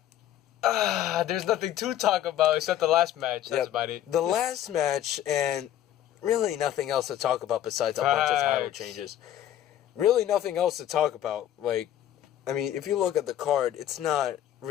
There's nothing to talk about except the last match. That's about it. The last match, and really nothing else to talk about besides a bunch of title changes. Really nothing else to talk about. Like, I mean, if you look at the card, it's not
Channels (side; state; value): right; quieter; 11.8 dB